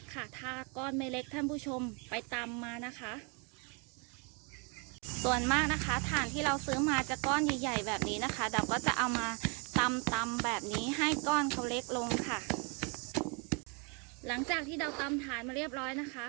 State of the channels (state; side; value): quieter; left; 33.6 dB